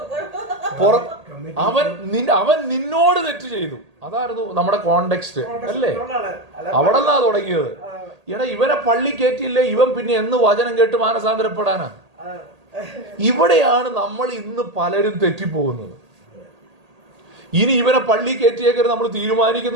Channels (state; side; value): late; left; 1.8 ms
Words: അവൻ നിന്നോട് തെറ്റ് ചെയ്തു. അതായിരുന്നു നമ്മുടെ കോണ്ടെക്സ്റ്റ് അല്ലേ? അവിടെ നിന്നാ തുടങ്ങിയത്. എടാ, ഇവനെ പള്ളി കയറ്റിയില്ലേ, ഇവൻ പിന്നെ എന്ന് വചനം കേട്ട് മാനസാന്തരപ്പെടാനാ? ഇവിടെയാണ് നമ്മൾ ഇന്ന് പലരും തെറ്റിപ്പോകുന്നത്. ഇനി ഇവനെ പള്ളി കയറ്റിയേക്കരുത് നമ്മൾ